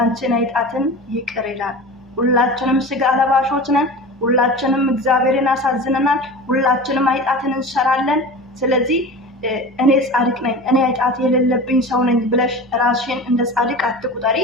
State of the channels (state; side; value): normal; both; correlation 0.33